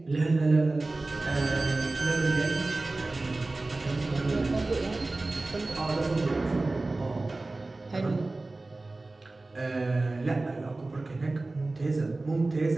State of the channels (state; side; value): quieter; left; 3.1 dB